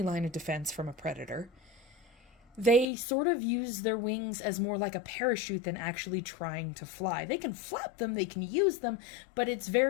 line of defense from a predator, they sort of use their wings as more like a parachute than actually trying to fly. They can flap them, they can use them, but it's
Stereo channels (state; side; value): drops out; right; at 2.9 s